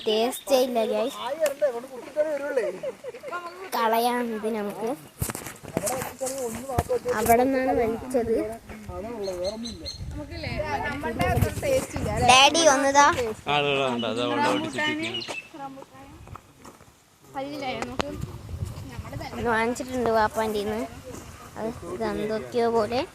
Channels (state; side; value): identical; both; correlation 1.00